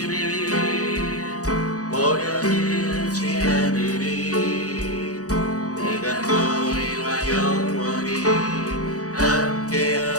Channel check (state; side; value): late; right; 0.66 ms